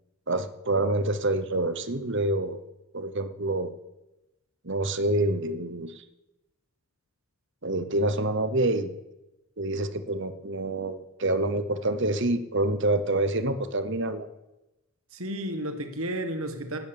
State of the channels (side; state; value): both; normal; correlation -0.01